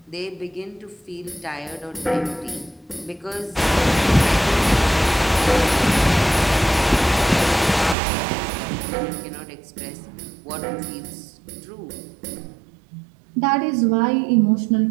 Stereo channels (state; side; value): drops out; left; at 8.0 s